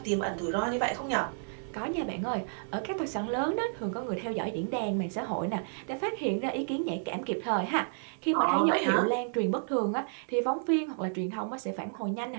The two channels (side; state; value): left; silent; 57 dB below the other